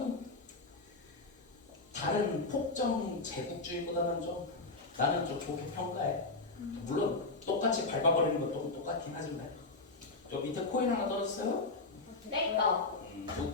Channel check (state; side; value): quieter; right; 3.5 dB